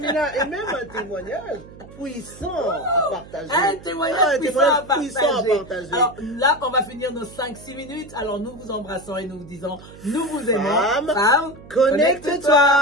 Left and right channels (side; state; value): right; noise; hum, 19 dB below the sound